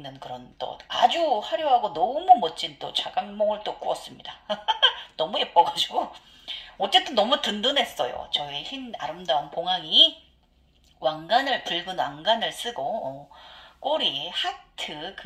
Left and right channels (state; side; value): identical; both; correlation 1.00